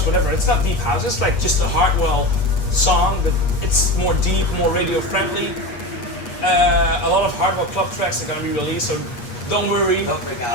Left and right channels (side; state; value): right; late; 8.4 ms